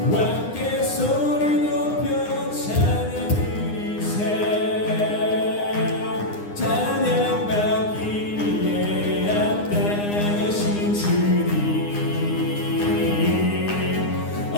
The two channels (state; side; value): late; right; 9.8 ms